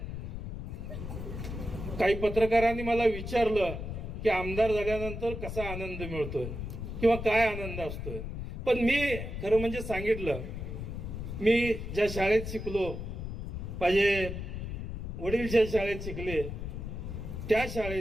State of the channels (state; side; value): noise; left; rumble, 6 dB below the sound